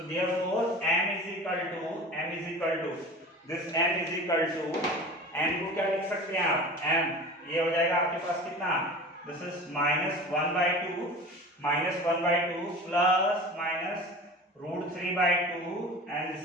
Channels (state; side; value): normal; both; correlation 0.37